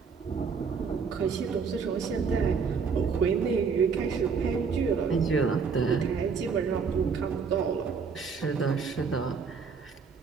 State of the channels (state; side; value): quieter; left; 5.6 dB